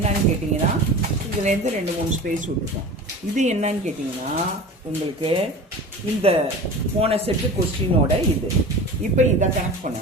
கேட்டிங்கன்னா இதுலேருந்து 2-3 ஸ்பேஸ் விட்டுருக்கோம். இது என்னன்னு கேட்டிங்கன்னா உங்களுக்கு இந்த போன செட்டு கொஸ்டினோட இது. இப்போ இதை கனெக்ட்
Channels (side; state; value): both; normal; correlation 0.35